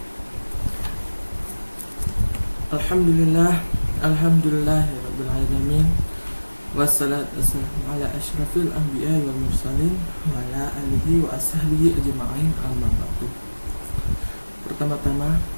Alhamdulillah, alhamdulillahirabbil alamin. Wassalatu wassalamu ala asyrafil anbiya'i wal mursalin wa ala alihi wa ashabihi ajma'in, amma ba'du. Pertama-tama,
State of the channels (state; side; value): inverted; both; correlation -1.00